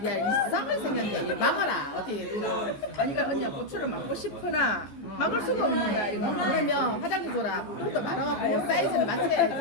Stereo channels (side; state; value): right; late; 15 ms